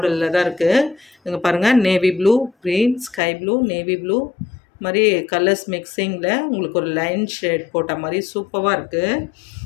தான் இருக்குது. இங்கே பாருங்கள், navy blue, green, sky blue, navy blue மாதிரி கலர்ஸ் மிக்சிங்கில் உங்களுக்கு ஒரு லைன் ஷேட் போட்ட மாதிரி சூப்பராக இருக்குது.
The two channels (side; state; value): right; drops out; at 3.2 s